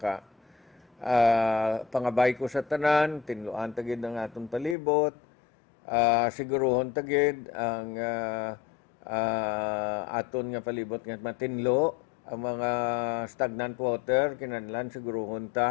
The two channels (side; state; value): right; drops out; at 4.8 s